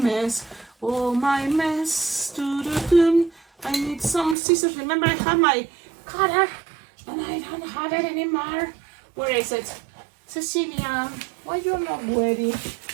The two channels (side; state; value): left; drops out; at 4.4 s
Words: Oh my mess. I need some scissors. Remember, I had my cutter, and I don't have it anymore. Where is it? Cecilia, why you're not ready?